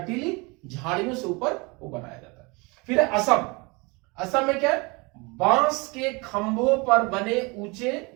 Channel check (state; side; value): quieter; left; 27.4 dB